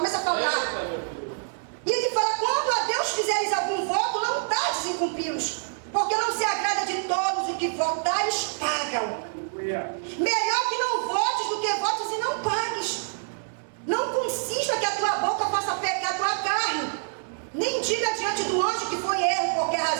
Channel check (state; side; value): silent; left; 61 dB below the other